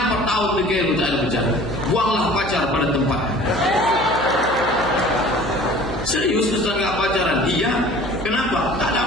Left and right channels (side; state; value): right; noise; hum, 11 dB below the sound